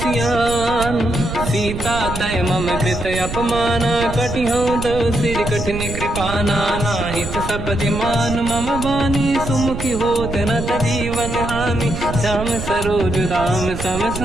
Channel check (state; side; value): noise; right; rumble, 7 dB below the sound